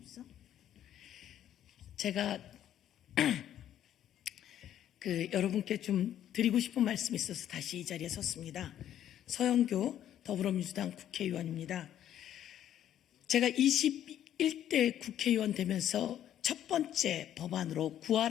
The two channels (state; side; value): quieter; right; 11.1 dB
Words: 제가 여러분께 좀 드리고 싶은 말씀이 있어서 다시 이 자리에 섰습니다. 서영교 더불어민주당 국회의원입니다. 제가 21대 국회의원 되면서 첫 번째 법안으로